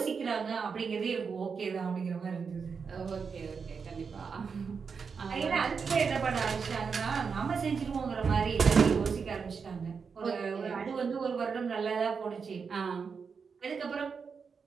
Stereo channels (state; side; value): quieter; left; 5.7 dB